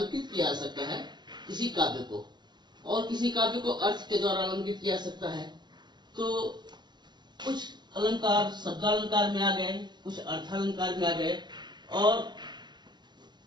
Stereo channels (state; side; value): late; left; 0.21 ms